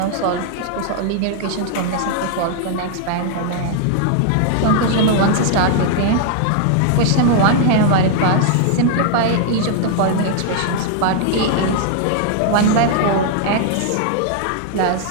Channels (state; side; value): different; both; correlation -0.01